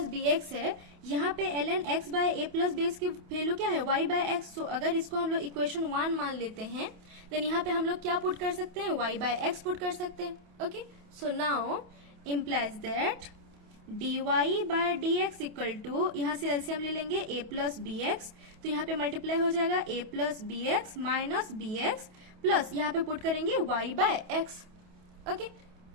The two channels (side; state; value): left; late; 28 ms